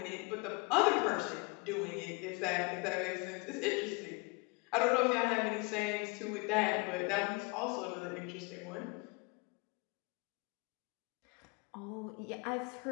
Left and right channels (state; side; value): quieter; right; 29.6 dB